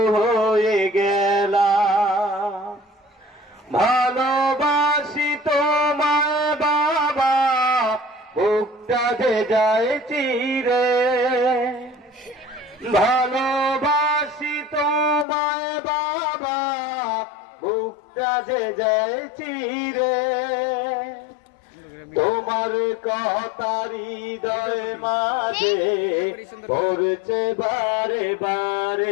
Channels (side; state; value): right; drops out; at 15.2 s